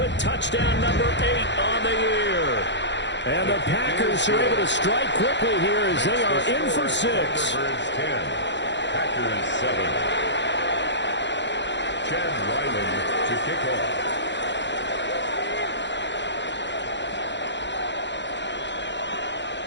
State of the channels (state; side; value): late; right; 0.52 ms